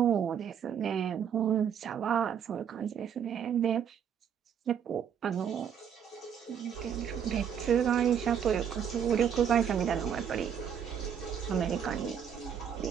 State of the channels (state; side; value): quieter; left; 8.2 dB